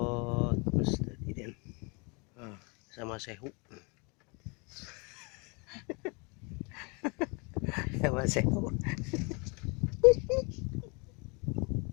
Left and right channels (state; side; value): quieter; right; 30.9 dB